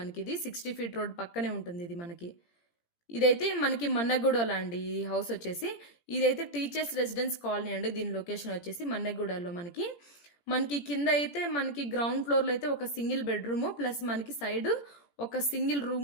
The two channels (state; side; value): late; right; 17 ms